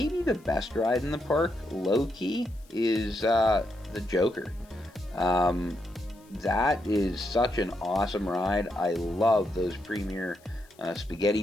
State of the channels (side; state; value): left; noise; hiss, 29 dB below the sound